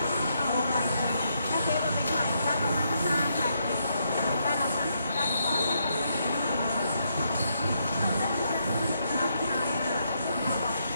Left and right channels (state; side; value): inverted; both; correlation -0.77